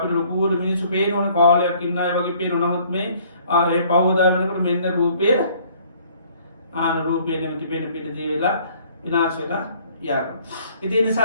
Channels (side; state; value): both; inverted; correlation -0.58